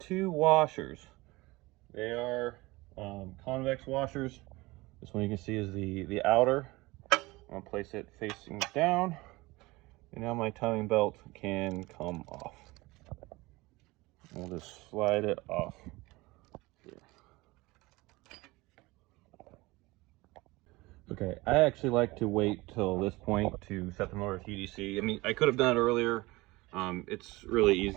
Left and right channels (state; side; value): quieter; left; 21.6 dB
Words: washers. They are convex washers. This one you can see is the outer. I'm gonna place it facing down, and now my timing belt can come off. We'll just slide it off here. Okay, I actually like to wait till this point to set the motor to TDC. I mean, I could have done it earlier. It's really